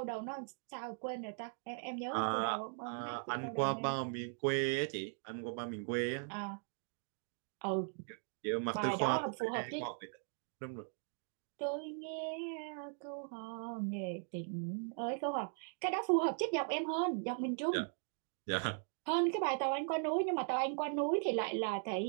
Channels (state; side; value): silent; left; 52 dB below the other